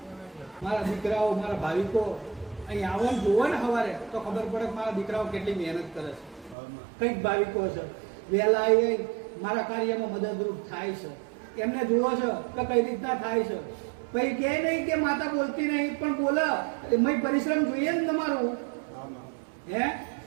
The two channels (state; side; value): drops out; left; at 6.6 s